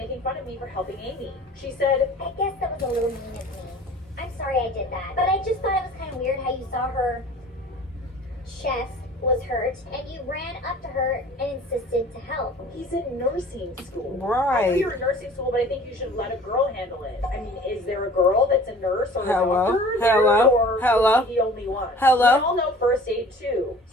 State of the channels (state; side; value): normal; both; correlation 0.46